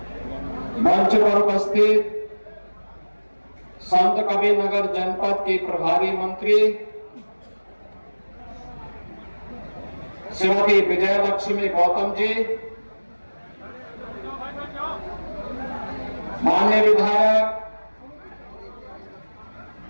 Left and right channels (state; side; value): inverted; both; correlation -1.00